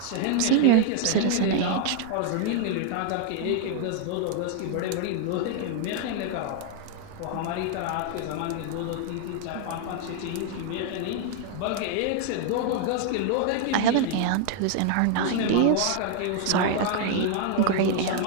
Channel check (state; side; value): different; both; correlation 0.00